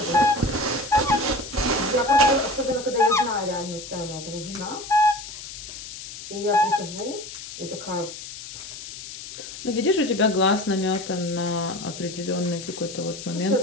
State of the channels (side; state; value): left; noise; hiss, 12 dB below the sound